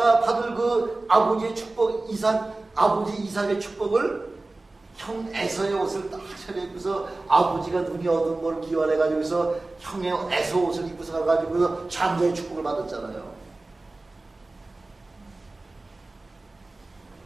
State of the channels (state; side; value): quieter; left; 3.1 dB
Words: 받을 그 아버지의 축복, 아버지 이삭의 축복을 형 에서의 옷을 딱 차려입고서 아버지가 눈이 어두운 걸 기원해가지고서 형의 에서 옷을 입고서 가가지고서 장자의 축복을 받았잖아요.